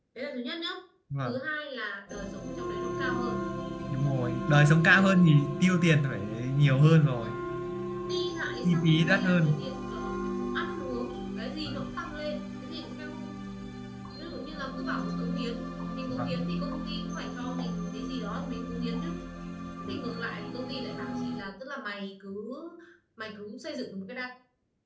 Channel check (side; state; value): both; identical; correlation 1.00